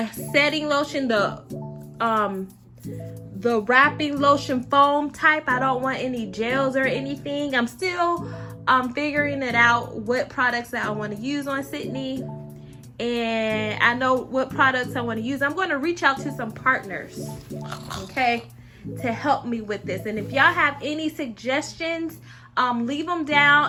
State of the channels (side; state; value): both; identical; correlation 1.00